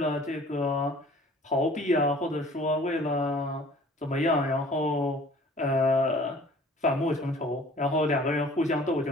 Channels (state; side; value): normal; both; correlation 0.50